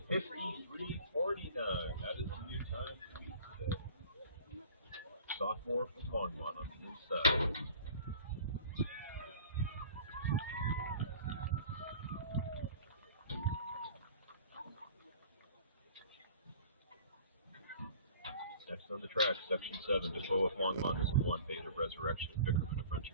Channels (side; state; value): both; inverted; correlation -0.45